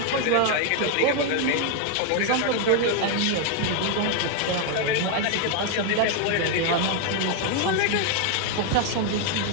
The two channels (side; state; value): both; different; correlation 0.00